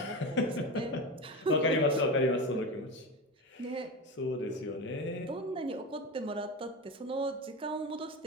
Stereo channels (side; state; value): both; normal; correlation 0.23